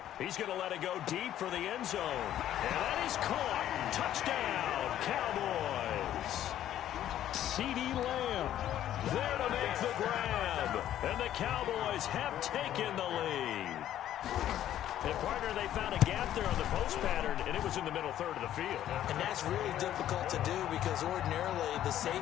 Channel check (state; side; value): quieter; right; 11.8 dB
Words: He's going to let it go deep for the end zone. And that is caught. Touchdown, Cowboys. CeeDee Lamb there to make the grab. And the Cowboys have taken the lead. And, partner, they found a gap there on the post pattern, and it was in the middle third of the field. And that's really difficult to do because ordinarily the